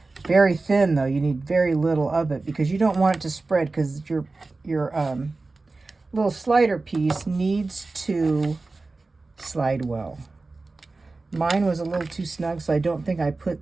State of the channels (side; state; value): left; quieter; 3.5 dB